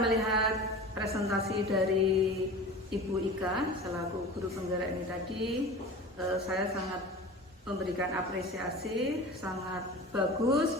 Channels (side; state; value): both; normal; correlation 0.35